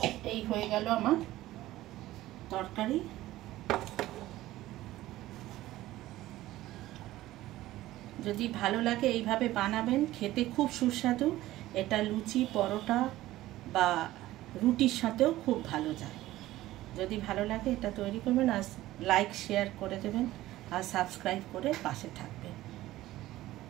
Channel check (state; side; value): quieter; left; 15.9 dB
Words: এই হয়ে গেল আমার তরকারি। যদি ভালো লাগে এইভাবে বানাবেন, খেতে খুব সুস্বাদু। এটা লুচি, পরোটা বা রুটির সাথেও খুব ভালো যায়। যদি ভালো লাগে এটা তৈরি করবেন, আর লাইক শেয়ার করে দেবেন, আর সাবস্ক্রাইব করে পাশে থাকবেন।